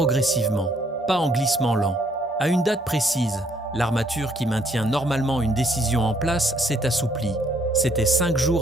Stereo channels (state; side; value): normal; both; correlation 0.67